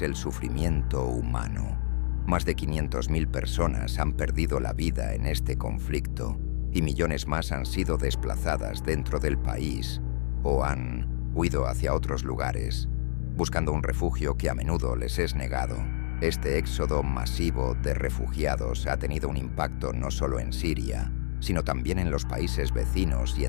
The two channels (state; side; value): silent; right; 59 dB below the other